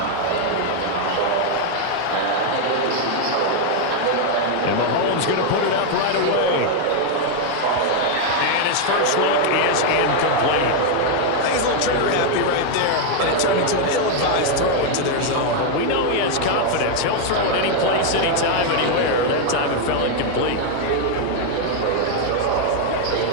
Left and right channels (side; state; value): both; different; correlation 0.00